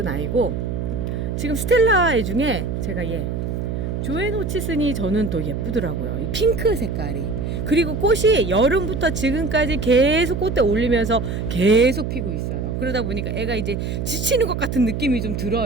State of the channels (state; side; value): noise; right; hum, 3 dB below the sound